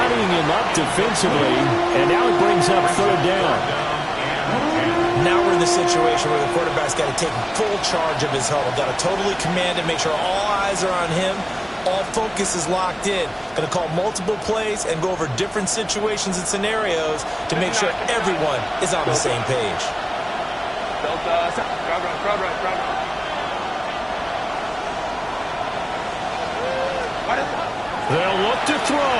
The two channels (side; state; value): both; identical; correlation 1.00